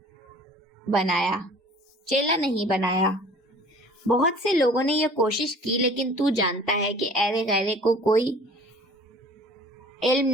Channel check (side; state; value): both; normal; correlation 0.48